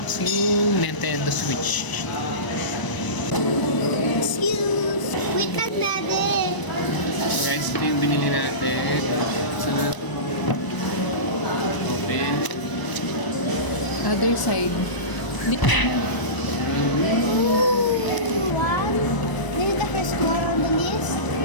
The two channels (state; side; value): late; right; 1.0 ms